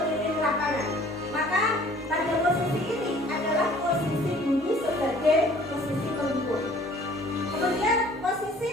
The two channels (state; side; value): normal; both; correlation 0.53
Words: lapangan. Maka pada posisi ini adalah posisi guru sebagai posisi penghukum. Kemudian posisi